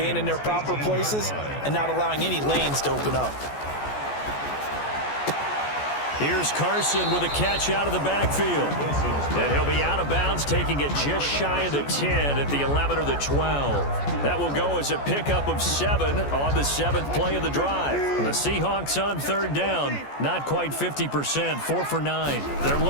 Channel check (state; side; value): late; right; 14 ms